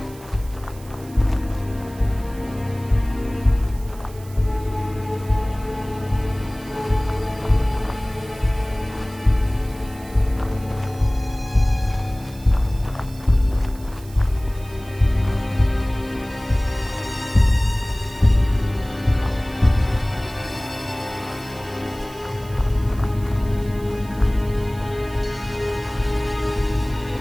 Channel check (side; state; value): right; noise; hiss, 22 dB below the sound